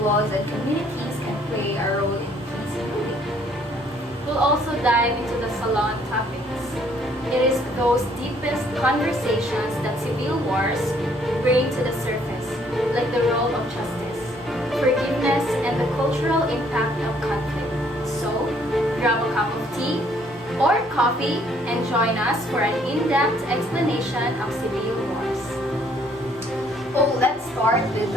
and communities can play a role in peace building. We'll also dive into the salon topics. It is those deepest conversations that civil wars bring to the surface, like the role of justice, forgiveness, and the cultural impact of conflict. So, grab a cup of tea or coffee and join us for an in-depth explanation of civil wars. Oh, let's start with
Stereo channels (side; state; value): both; normal; correlation 0.64